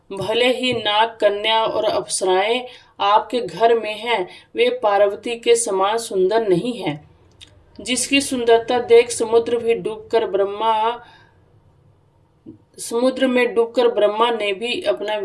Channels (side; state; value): both; identical; correlation 1.00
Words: भले ही नाग, कन्या और अप्सराएं आपके घर में हैं, वे पार्वती के समान सुंदर नहीं हैं। जिसकी सुंदरता देख समुद्र में डूबकर ब्रह्मा ने भी अपना